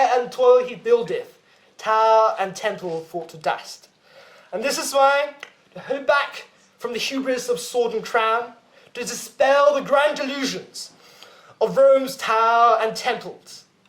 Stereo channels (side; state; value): both; identical; correlation 1.00